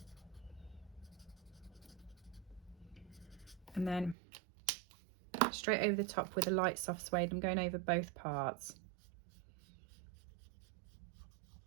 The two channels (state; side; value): drops out; left; at 4.2 s